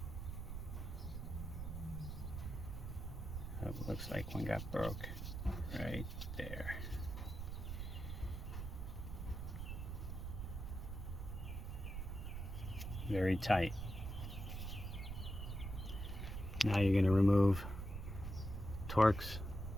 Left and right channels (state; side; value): noise; right; rumble, 5 dB below the sound